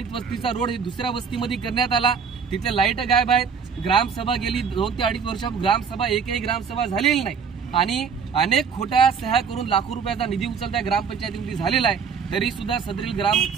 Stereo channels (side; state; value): left; quieter; 6.3 dB